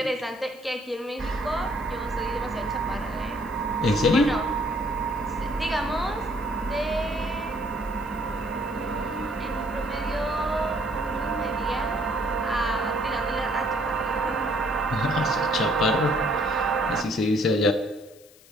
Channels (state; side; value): noise; left; hiss, 25 dB below the sound